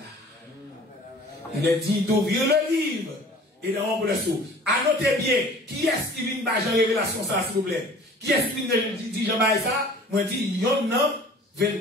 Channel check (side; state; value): both; normal; correlation 0.47